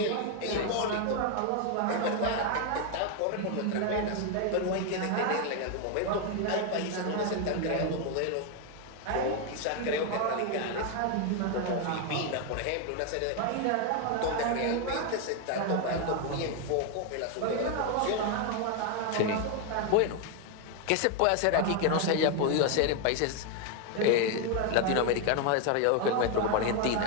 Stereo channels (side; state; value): both; different; correlation 0.01